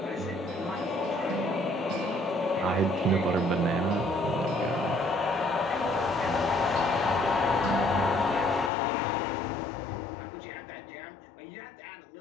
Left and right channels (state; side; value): drops out; right; at 8.7 s